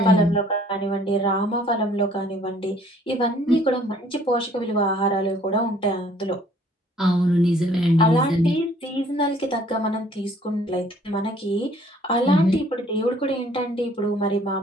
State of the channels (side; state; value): both; normal; correlation 0.58